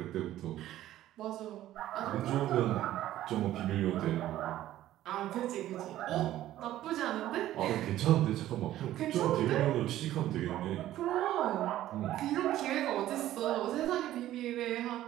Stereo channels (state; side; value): quieter; left; 13.7 dB